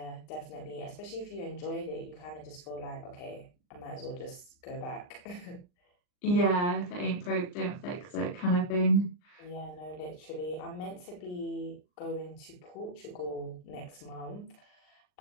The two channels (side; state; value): right; late; 39 ms